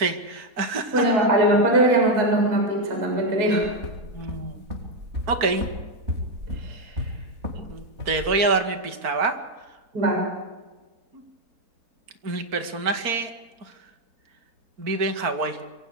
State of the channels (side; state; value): left; late; 4.4 ms